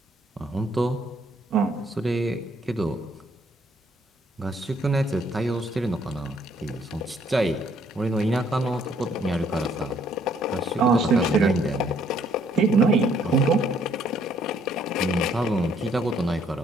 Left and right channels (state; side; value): normal; both; correlation 0.66